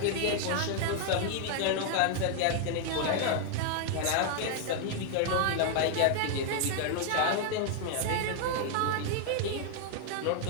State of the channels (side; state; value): both; different; correlation 0.00